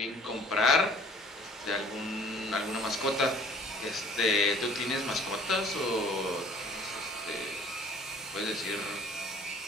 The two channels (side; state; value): both; normal; correlation 0.53